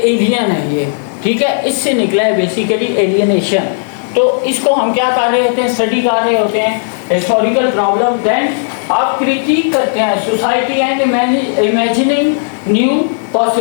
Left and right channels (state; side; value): silent; right; digital silence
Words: है ये, ठीक है। इससे निकला है बेसिकली एलियनेशन। तो इसको हम क्या कर रहे होते हैं, स्टडी कर रहे होते हैं हिस्टोरिकल प्रॉब्लम। देन आप क्रिटिक करते हैं society and imagining new